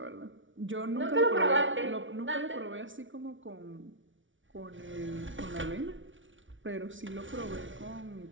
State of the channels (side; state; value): left; late; 0.56 ms